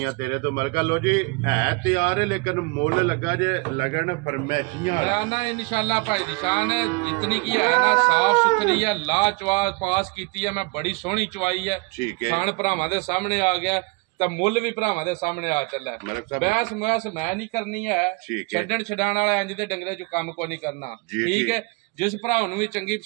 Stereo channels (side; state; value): left; quieter; 28.8 dB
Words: तेरे तो मलका। लो जी है तैयार है लेकिन मुल लगा जे लगन फरमैशियां ना इंशाल्लाह भाई निशान है जितनी की है ना साफ सुथरी है ला चवा पास की है मैं बड़ी सोहनी चवाई है। ठीक है खान भरावां दे सामने आ गया तो मुल भी भरावां दे सामने आ चला है। बहस महस मैं नहीं करनी है छड्डण छडाण वाले इंज दे डंगरे चो काम को नहीं करना। ठीक है जिस भरा भी चंगी